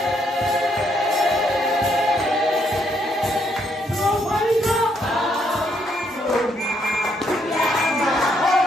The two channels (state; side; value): normal; both; correlation 0.73